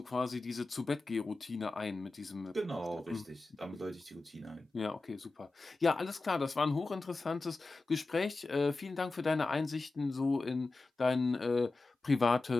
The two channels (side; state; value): right; quieter; 3.4 dB